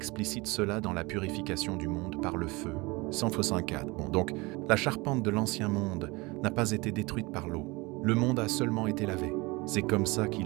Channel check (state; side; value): quieter; left; 24.5 dB